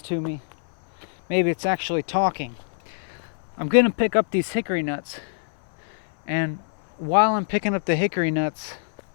to me. Maybe it's actually talking. I'm going to pick up these hickory nuts. And while I'm picking up the hickory nuts,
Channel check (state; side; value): silent; right; 61 dB below the other